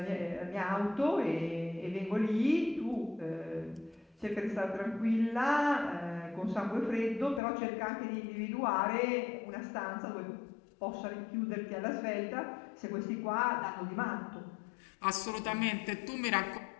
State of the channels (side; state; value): right; drops out; at 7.4 s